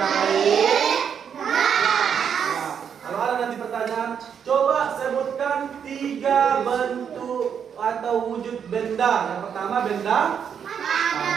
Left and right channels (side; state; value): left; quieter; 7.7 dB